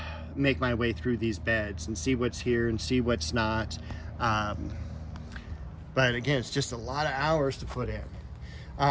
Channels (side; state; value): both; identical; correlation 1.00